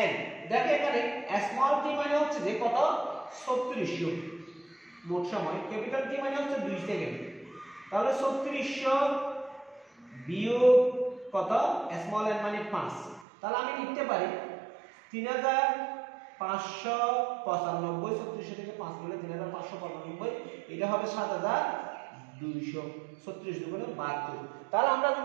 n। দেখো এখানে স্মল t মানে হচ্ছে যে কত? 3400 মোট সময়। ক্যাপিটাল T মানে হচ্ছে 2 সেকেন্ড। তাহলে 3400 বিয়োগ কত? স্মল n মানে 5। তাহলে আমি লিখতে পারি 3595। 3400 থেকে 5 গেলে 3595, এটা হবে 7200। 36 দুগুণে 72। তাহলে আমরা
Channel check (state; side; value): drops out; left; at 13.2 s